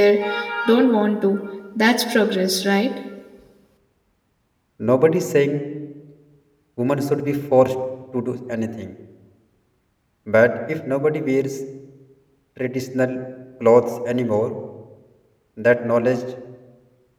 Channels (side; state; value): both; identical; correlation 1.00